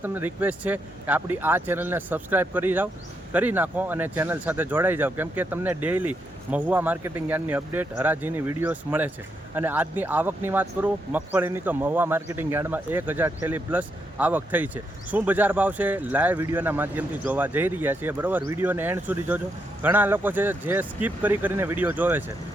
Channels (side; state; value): both; normal; correlation 0.80